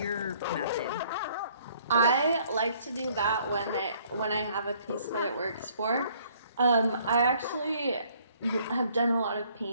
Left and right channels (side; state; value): both; inverted; correlation -0.61